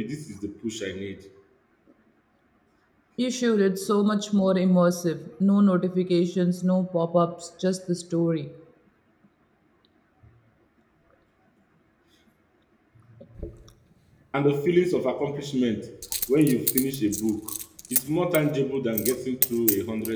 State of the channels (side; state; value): both; identical; correlation 1.00